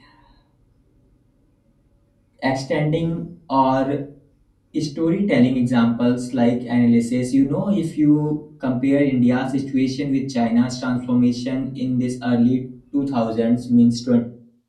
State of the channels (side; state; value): both; identical; correlation 1.00